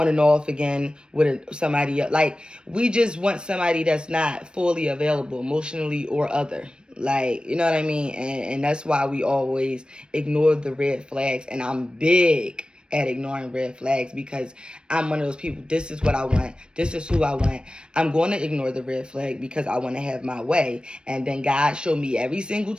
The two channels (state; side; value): late; left; 0.053 ms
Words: and off again with somebody else. Like, we just want somebody that's not fully available emotionally or other. Like, you know what I mean? And that's why we always ignore the red flags. And I'm big at ignoring red flags because I'm one of those people. This is what I want. This is who I want. I'm going to ignore the red flag because I want to have my way. And then God showed me every single